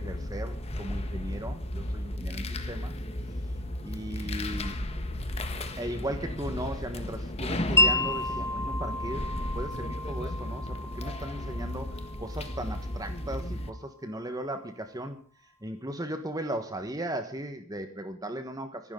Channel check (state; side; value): normal; both; correlation 0.33